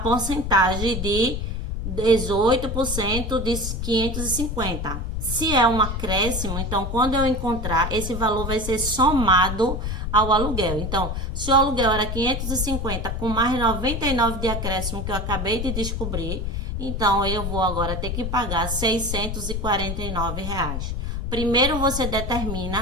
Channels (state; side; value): noise; left; rumble, 3 dB below the sound